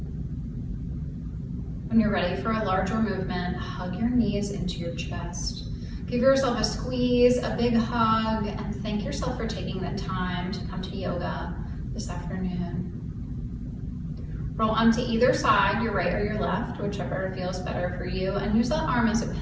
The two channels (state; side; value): identical; both; correlation 1.00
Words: When you're ready for a larger movement, hug your knees into your chest. Give yourself a squeeze, a big hug, and thank yourself for taking the time to come to yoga this afternoon. Roll onto either side, your right or your left, whichever feels better for you, and use that arm as a